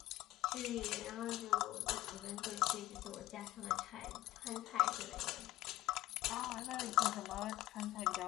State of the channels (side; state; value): right; quieter; 16.6 dB